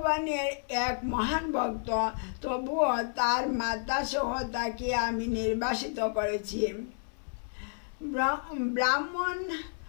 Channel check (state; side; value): silent; right; 57 dB below the other